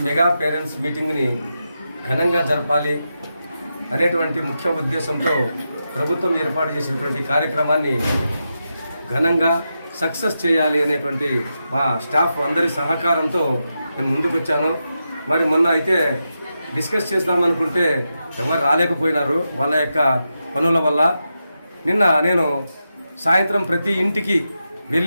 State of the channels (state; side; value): inverted; both; correlation -0.88